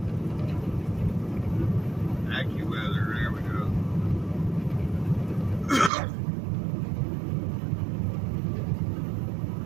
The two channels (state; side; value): drops out; left; at 5.9 s